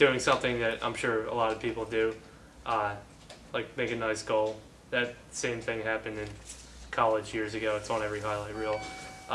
something that I'm sure a lot of people do, like make a nice goal. That same thing happened in college years ago. It's on every highlight reel.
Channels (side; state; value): both; identical; correlation 1.00